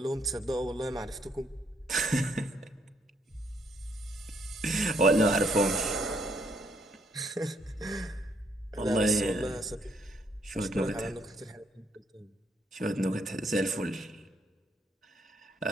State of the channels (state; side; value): normal; both; correlation 0.71